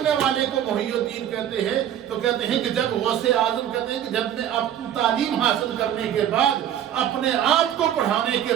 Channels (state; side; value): quieter; left; 10.5 dB